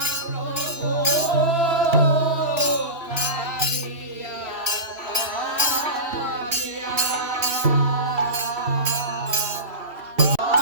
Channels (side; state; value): left; late; 2.7 ms